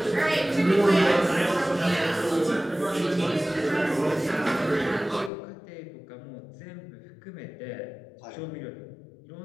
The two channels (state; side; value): drops out; right; at 5.3 s